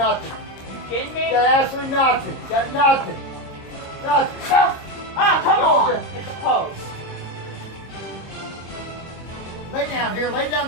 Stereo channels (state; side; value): late; right; 26 ms